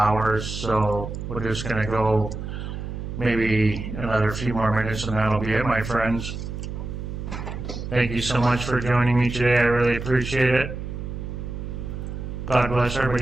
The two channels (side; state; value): right; noise; hum, 7 dB below the sound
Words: So we're just going to go maybe another few more minutes and that'll be it, my friends. Thank you so much for joining me today. I really appreciate it. God bless